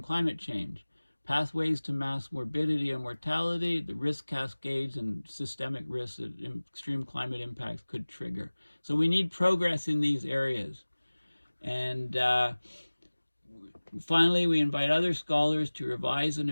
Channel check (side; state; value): both; inverted; correlation -1.00